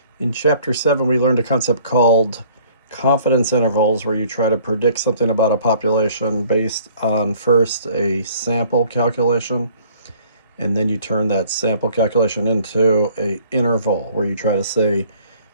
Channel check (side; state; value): both; inverted; correlation -0.55